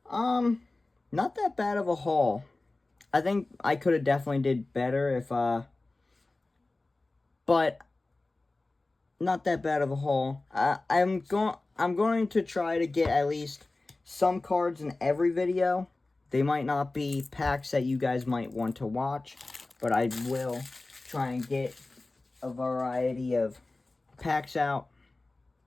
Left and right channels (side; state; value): right; quieter; 3.1 dB